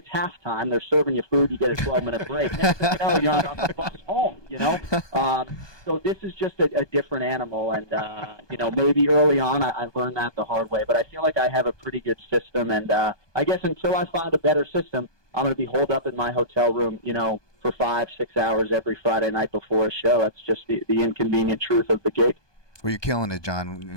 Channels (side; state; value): right; late; 1.2 ms